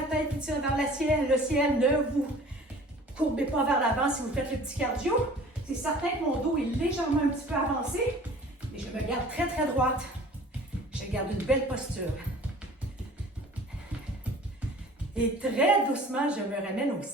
tête qui tire vers le ciel. Le ciel, ne vous courbez pas vers l'avant si vous faites le petit cardio. C'est certain que mon dos est légèrement un petit peu avancé, mais je me garde très droite. Je garde une belle posture. Et très doucement, je me ramène au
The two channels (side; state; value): both; normal; correlation 0.47